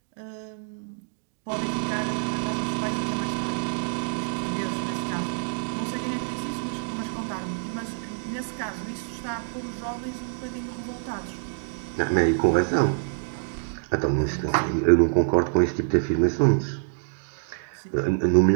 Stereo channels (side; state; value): left; silent; digital silence